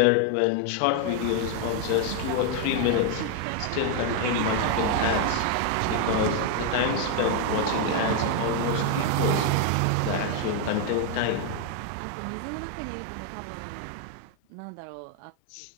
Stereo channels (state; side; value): different; both; correlation 0.01